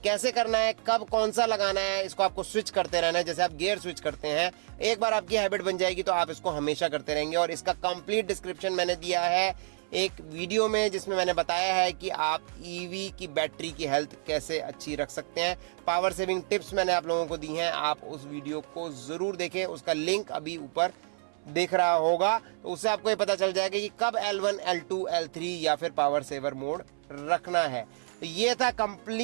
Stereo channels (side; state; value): left; silent; 58 dB below the other